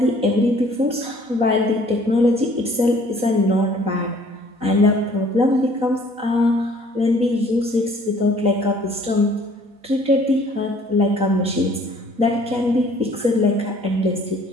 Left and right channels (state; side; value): late; left; 4.1 ms